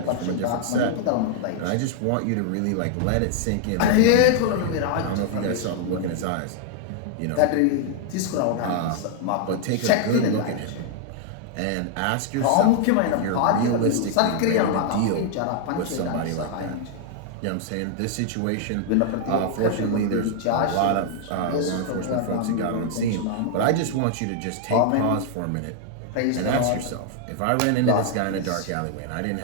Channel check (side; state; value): both; different; correlation 0.00